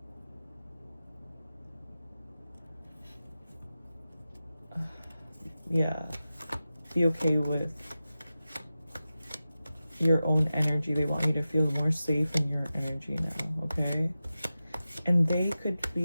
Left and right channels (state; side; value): inverted; both; correlation -0.94